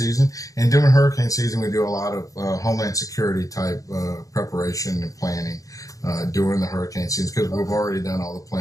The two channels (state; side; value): late; right; 0.17 ms